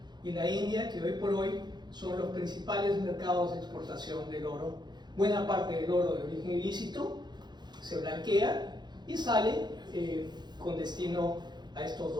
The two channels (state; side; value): late; left; 0.21 ms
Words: y la India, que hoy por hoy son los principales mercados de exportación del oro. Buena parte del oro de origen ilícito se blanquea y sale con destino a estos